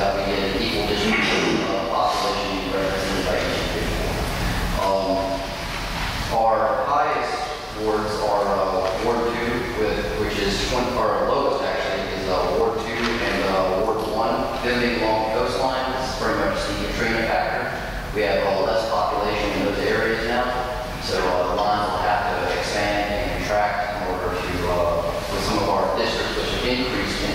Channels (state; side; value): identical; both; correlation 1.00